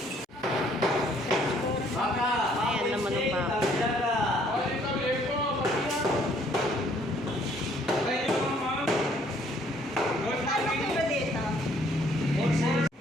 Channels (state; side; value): normal; both; correlation 0.63